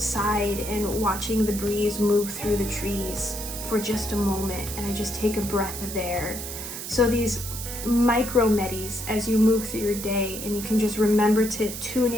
and watching the breeze move through the trees for just a moment, and I just take a breath of air. So these micro medis as you move through your day, and you can just remember to tune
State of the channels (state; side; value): noise; right; hiss, 8 dB below the sound